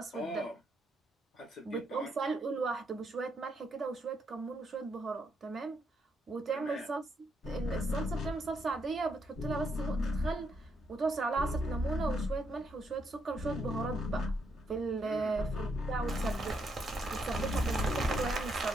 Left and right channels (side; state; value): both; normal; correlation 0.77